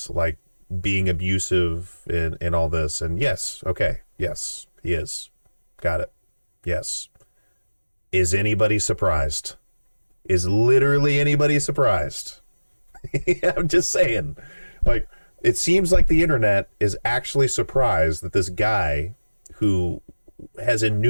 like being abusive in all this. And yes, okay, yes, he is. Got it. Yes. Is anybody surprised? Is literally anybody surprised? I'm just saying. Like, it seems like the internet is actually surprised that this guy who has in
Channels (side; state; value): both; inverted; correlation -1.00